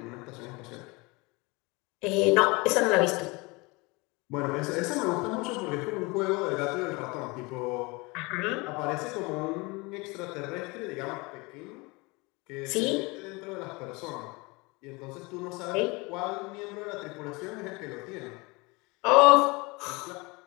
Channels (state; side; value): quieter; right; 25.9 dB